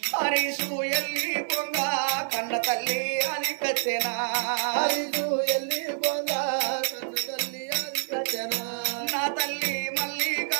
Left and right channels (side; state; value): left; silent; digital silence